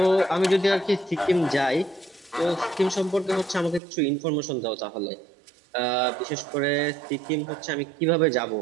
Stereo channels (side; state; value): left; drops out; at 3.8 s